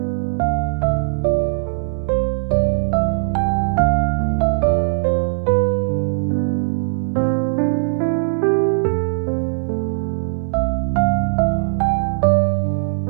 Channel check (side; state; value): left; silent; digital silence